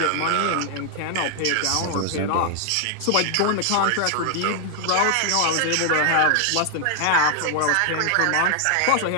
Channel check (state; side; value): different; both; correlation 0.00